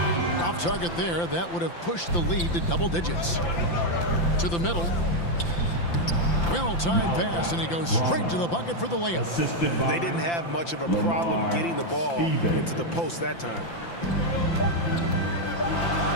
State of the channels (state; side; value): late; right; 5.9 ms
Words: Off target there. That would have pushed the lead to double digits. To the middle. Well-timed pass, and he goes straight to the bucket for the layup. They didn't have much of a problem getting the ball into the post that time.